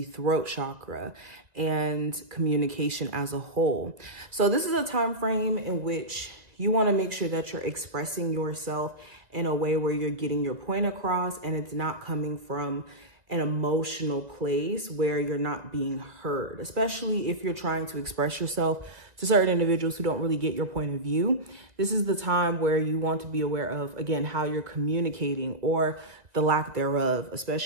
throat chakra and communication as a whole. So this is a time frame in which you want to make sure that you're expressing yourself in a way where you're getting your point across, and it's not coming from an emotional place where you're not being heard, especially if you're trying to express yourself to certain individuals who don't really get your point of view. This is the time where you want to be aware of, again, how you're communicating or the lack thereof,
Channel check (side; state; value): left; late; 1.8 ms